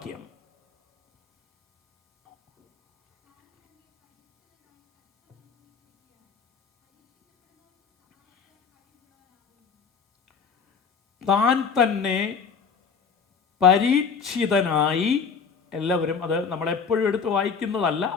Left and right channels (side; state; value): right; quieter; 5.8 dB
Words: താൻ തന്നെ പരീക്ഷിതനായി, എല്ലാവരും അത് നമ്മളെപ്പോഴും എടുത്ത് വായിക്കുന്നതല്ല,